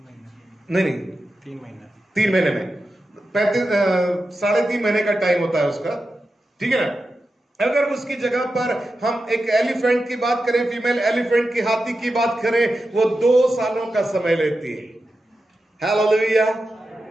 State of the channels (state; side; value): normal; both; correlation 0.91